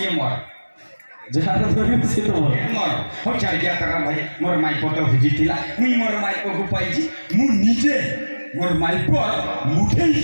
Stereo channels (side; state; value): both; inverted; correlation -1.00